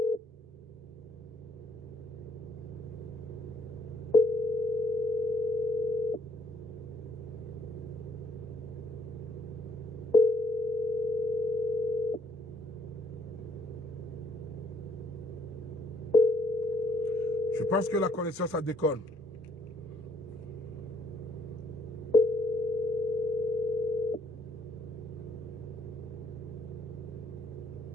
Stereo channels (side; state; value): both; normal; correlation 0.66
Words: Je pense que la connexion, ça déconne.